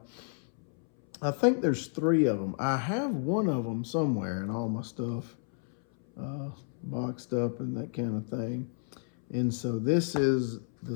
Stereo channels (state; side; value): silent; right; 57 dB below the other